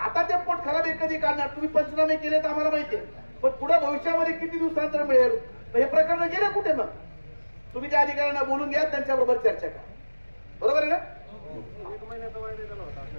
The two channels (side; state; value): both; inverted; correlation -1.00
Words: ते पोटखराबे कधी काढणार तुम्ही पंचनामे केले तर आम्हाला माहिती आहे पण पुढे भविष्यामध्ये किती दिवसांतर मिळेल हे प्रकरण गेले कुठे मग तुम्ही त्या अधिकाऱ्यांना बोलून घ्या त्यांच्याबरोबर चर्चा करा बरोबर आहे ना.